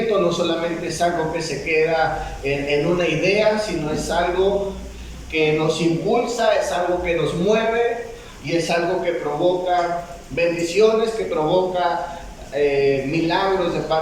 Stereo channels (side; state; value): both; identical; correlation 1.00